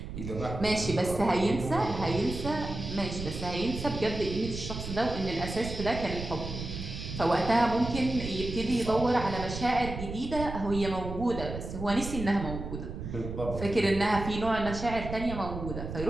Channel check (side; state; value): right; noise; rumble, 7 dB below the sound